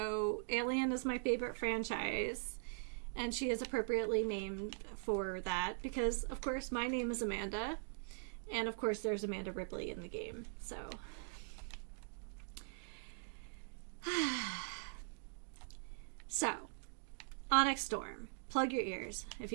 Alien is my favorite franchise, and she is appropriately named for that, because, of course, my name is Amanda, and, of course, there's Amanda Ripley in the game, so... So, Onyx Storm. Plug your ears if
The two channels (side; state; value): left; silent; digital silence